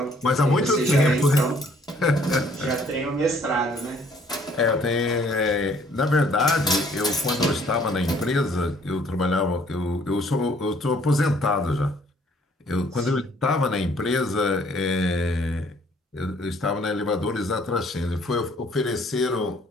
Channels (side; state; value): both; normal; correlation 0.61